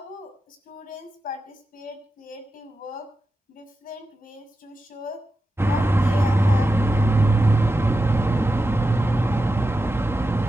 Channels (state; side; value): normal; both; correlation 0.91